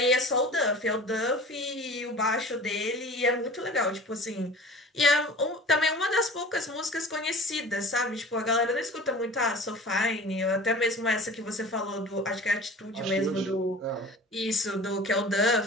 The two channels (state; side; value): normal; both; correlation 0.41